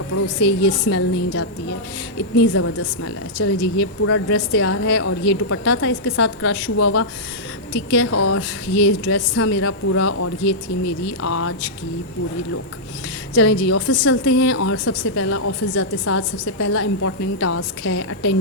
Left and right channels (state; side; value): normal; both; correlation -0.10